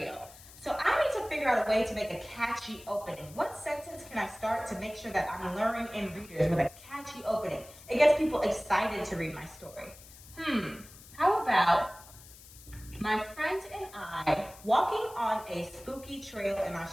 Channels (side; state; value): left; noise; hiss, 20 dB below the sound